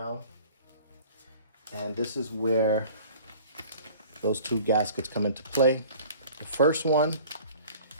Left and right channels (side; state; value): both; inverted; correlation -0.47